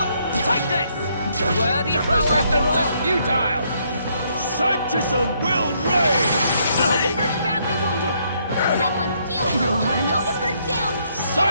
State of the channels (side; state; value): both; inverted; correlation -0.71